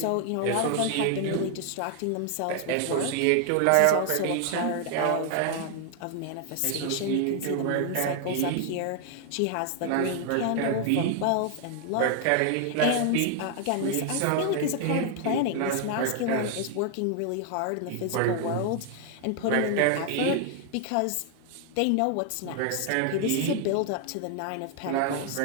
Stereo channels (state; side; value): different; both; correlation 0.00